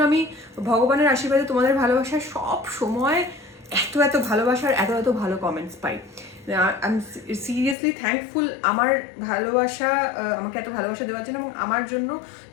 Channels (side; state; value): right; drops out; at 7.8 s